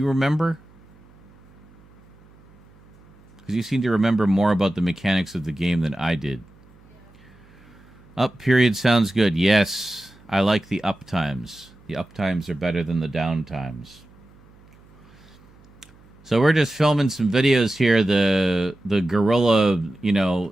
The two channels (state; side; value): noise; right; hum, 26 dB below the sound